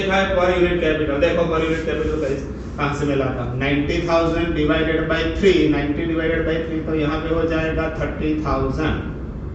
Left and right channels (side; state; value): both; identical; correlation 1.00